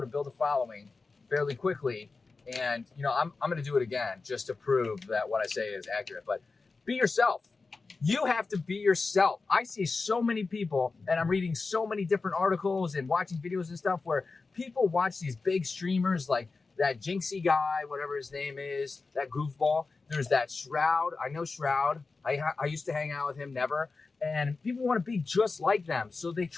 to build a following fairly quickly. And, I'm going to do it again just to prove that what I say is accurate. But be yourself. You have to be yourself. I see so many people, and I'm reading so many different articles and watching videos and stuff where people watch these big streamers like that Jinxie guy, whatever his name is, that goofball. There's that Shroud. I know Shroud. I used to hang out with him, never. And people want to be just like them. So they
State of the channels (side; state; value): right; quieter; 4.1 dB